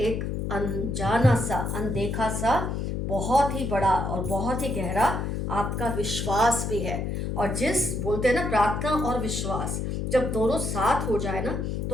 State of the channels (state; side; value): noise; left; hum, 2 dB below the sound